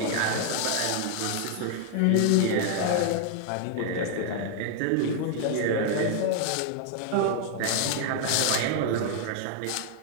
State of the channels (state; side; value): different; both; correlation 0.00